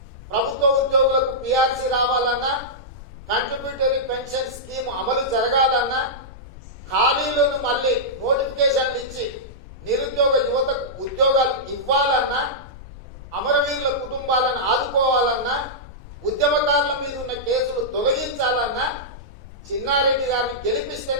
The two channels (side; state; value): left; noise; rumble, 16 dB below the sound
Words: ప్రభుత్వ ఉద్యోగులకు పిఆర్సీ రావాలన్నా, కంట్రిబ్యూటరీ పెన్షన్ స్కీమ్ అమలు జరగాలన్నా, ఖాళీలను మళ్ళీ నోటిఫికేషన్లు ఇచ్చి నిరుద్యోగ యువతకు ఉద్యోగాలు ఇవ్వాలన్నా, అమరవీరుల కుటుంబాలను ఆదుకోవాలన్నా, ఉద్యమకారుల మీద ఉన్న కేసులు తొలగించాలన్నా చిన్నారెడ్డి గారిని